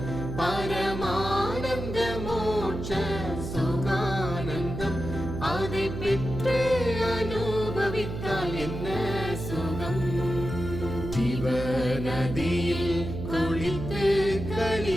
பரமானந்த மோட்ச சுகானந்தம், அதை பெற்று அனுபவித்தால் என்ன சுகம். ஜீவநதியில் குளித்து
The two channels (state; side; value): noise; right; hum, 6 dB below the sound